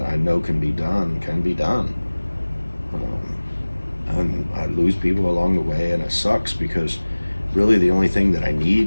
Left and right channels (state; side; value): inverted; both; correlation -1.00